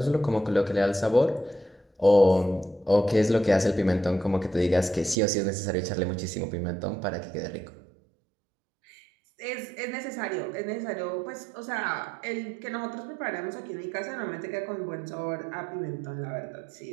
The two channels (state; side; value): drops out; left; at 5.2 s